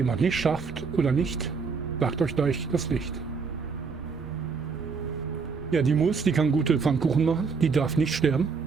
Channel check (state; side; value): quieter; left; 5.2 dB